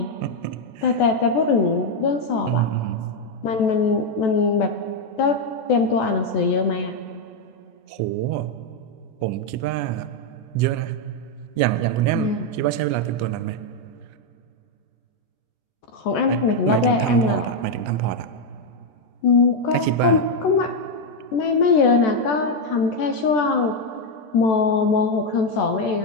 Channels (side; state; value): right; late; 13 ms